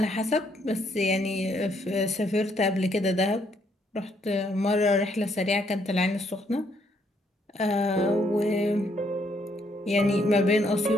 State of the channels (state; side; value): normal; both; correlation 0.71